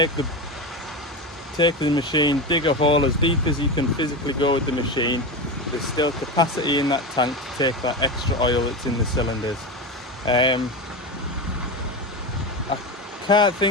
the machine, dig a hole as deep as you can physically go with the machine, there's still capacity in that tank to take that extra oil that's in the cylinders. I can't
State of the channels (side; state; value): both; normal; correlation 0.20